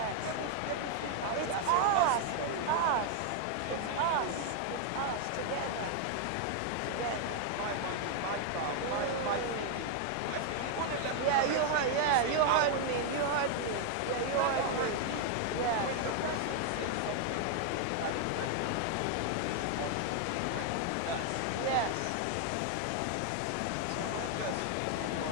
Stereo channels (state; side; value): different; both; correlation 0.00